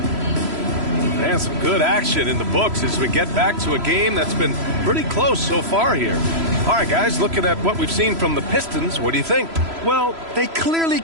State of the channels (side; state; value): left; late; 3.0 ms